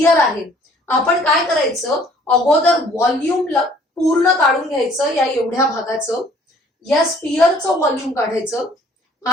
आहे. आपण काय करायचं, अगोदर व्हॉल्यूम पूर्ण काढून घ्यायचं या एवढ्या भागाचं. या स्पियरचं व्हॉल्यूम काढायचं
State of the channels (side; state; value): both; normal; correlation 0.57